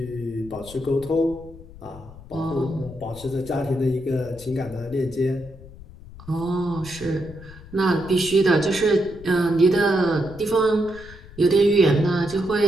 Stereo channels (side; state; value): left; noise; rumble, 18 dB below the sound